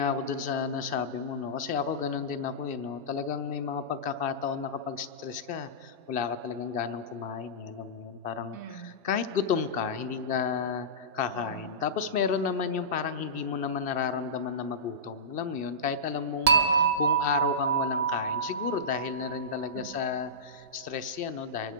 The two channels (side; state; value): left; late; 3.7 ms